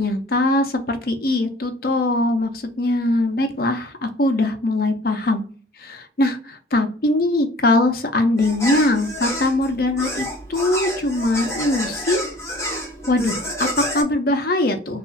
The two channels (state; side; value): normal; both; correlation 0.50